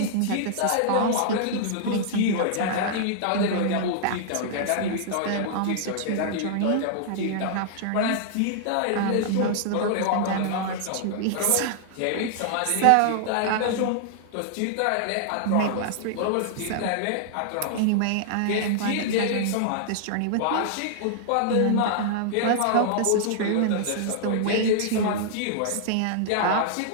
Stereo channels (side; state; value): both; different; correlation -0.01